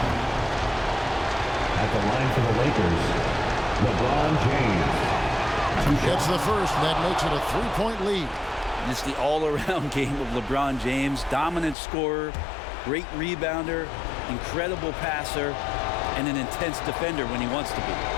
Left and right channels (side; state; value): right; drops out; at 11.8 s